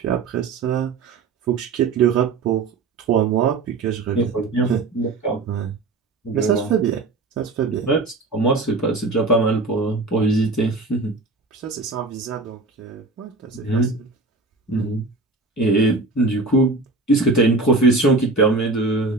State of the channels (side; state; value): left; quieter; 3.6 dB